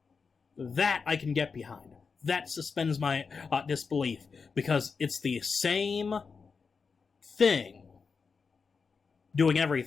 That I can get behind. That suspends my disbelief, because it's the same thing doing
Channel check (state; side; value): quieter; right; 5.2 dB